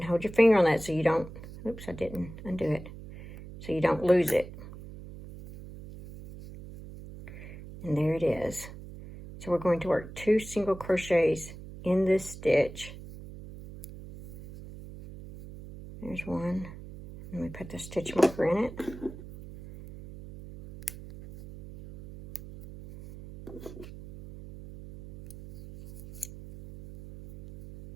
hold your finger on that so you don't, oops, I didn't undo it, so you don't lose it. And there it is. So we're going to work 2 single crochets in this stitch. There's one. Let me put the stitch marker in it.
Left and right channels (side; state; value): right; noise; hum, 14 dB below the sound